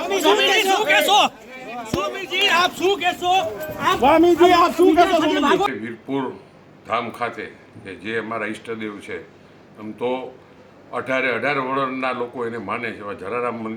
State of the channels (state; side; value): identical; both; correlation 1.00